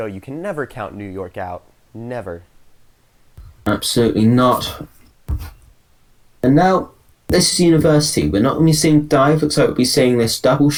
you can never count New York out. Never. Absolutely not. And now, this is University. We're not going to be seeing Dive. Looks like we'll be seeing this double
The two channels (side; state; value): both; identical; correlation 1.00